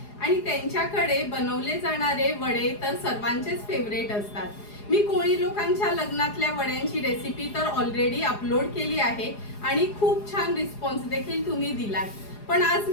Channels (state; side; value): late; right; 4.8 ms